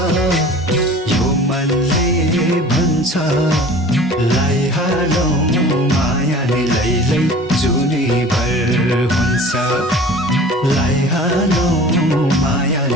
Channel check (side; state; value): both; normal; correlation 0.43